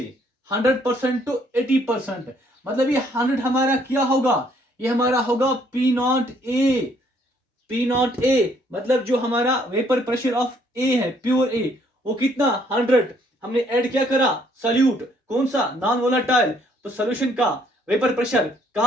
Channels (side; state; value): both; normal; correlation 0.66